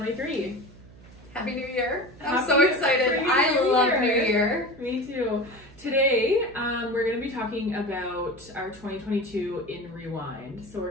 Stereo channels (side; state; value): right; noise; hum, 22 dB below the sound